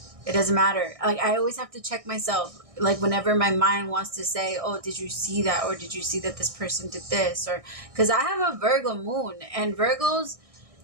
It doesn't matter. Like, I always have to check myself. Like, whenever my mind wants to say, oh, did you see that? Or did you see that this person did this? Or, because I have a Virgo moon, and Virgos,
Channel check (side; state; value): left; late; 1.6 ms